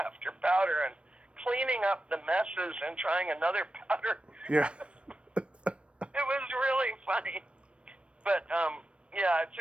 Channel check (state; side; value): late; left; 0.060 ms